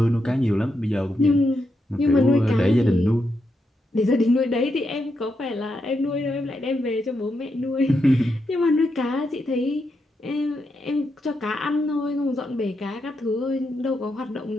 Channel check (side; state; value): both; normal; correlation 0.83